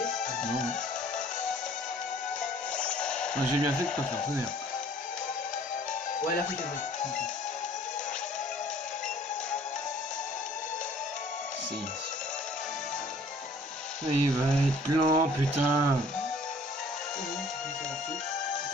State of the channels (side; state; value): both; normal; correlation 0.54